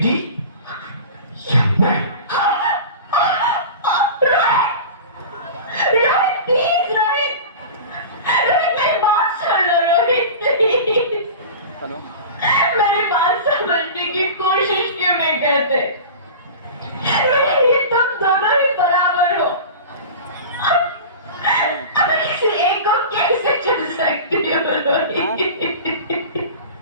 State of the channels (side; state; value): both; inverted; correlation -0.33